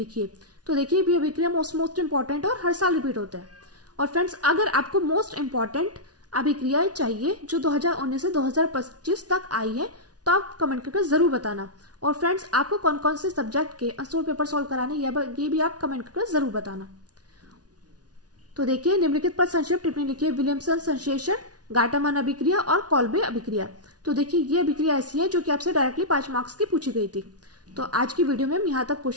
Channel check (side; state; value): left; late; 0.69 ms